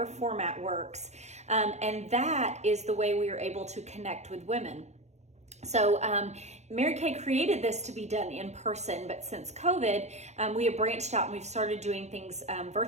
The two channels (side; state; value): left; late; 0.33 ms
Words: format works. And that is the way we are able to connect with women. So Mary Kay created this to be done in person, but since COVID, we have branched out and we've started doing things